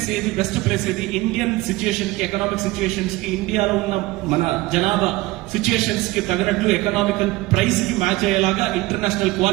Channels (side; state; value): left; quieter; 19.7 dB